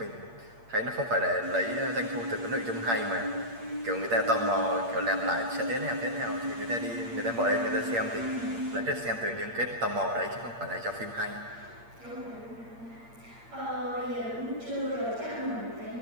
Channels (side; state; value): left; late; 8.6 ms